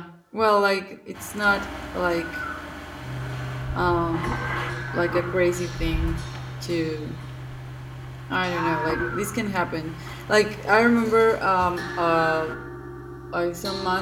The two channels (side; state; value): both; identical; correlation 1.00